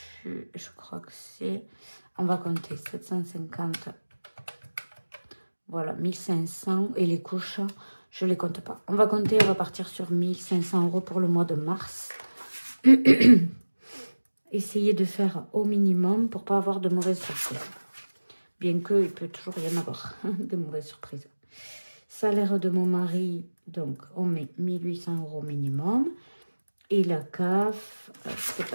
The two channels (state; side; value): inverted; both; correlation -1.00